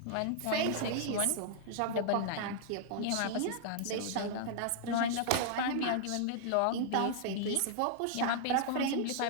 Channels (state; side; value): different; both; correlation -0.01